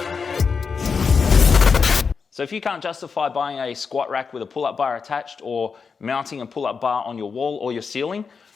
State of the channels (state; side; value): quieter; right; 5.4 dB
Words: So if you can't justify buying a squat rack with a pull-up bar attached or mounting a pull-up bar on your wall or your ceiling,